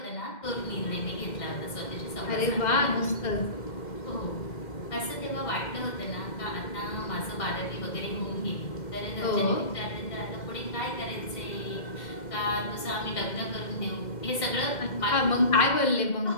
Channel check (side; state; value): right; late; 2.1 ms